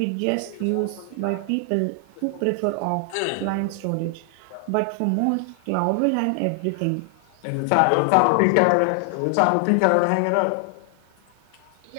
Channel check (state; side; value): different; both; correlation 0.00